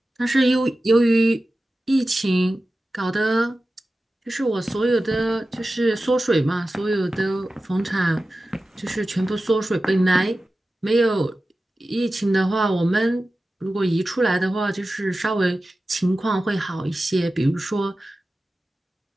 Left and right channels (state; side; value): normal; both; correlation 0.95